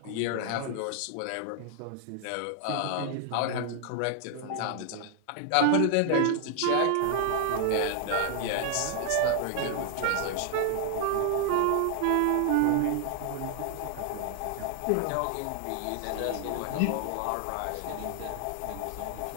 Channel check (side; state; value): both; different; correlation 0.00